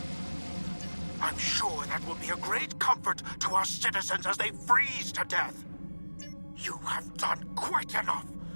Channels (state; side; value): inverted; both; correlation -1.00